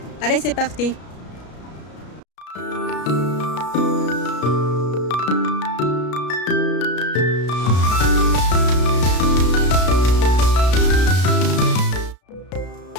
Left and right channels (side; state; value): right; late; 33 ms